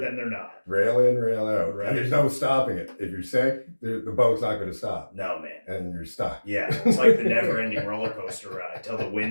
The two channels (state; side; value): inverted; both; correlation -1.00